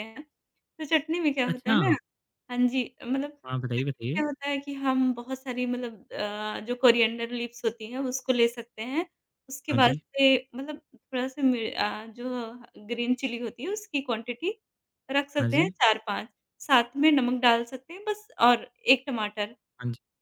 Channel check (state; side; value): identical; both; correlation 1.00